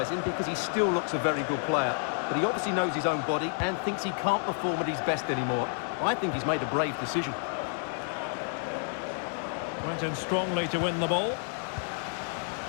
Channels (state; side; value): silent; right; 58 dB below the other